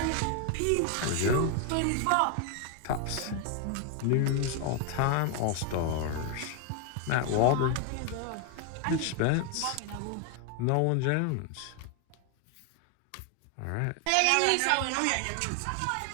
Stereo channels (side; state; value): both; different; correlation 0.01